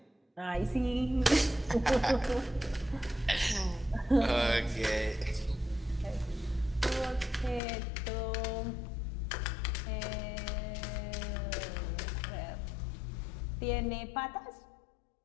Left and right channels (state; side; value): drops out; right; at 7.6 s